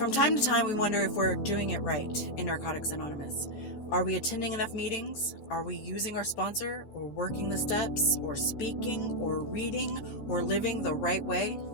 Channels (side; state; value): right; late; 15 ms